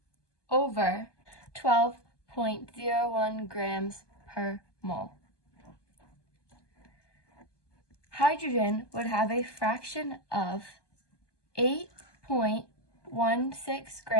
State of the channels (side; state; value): right; late; 1.2 ms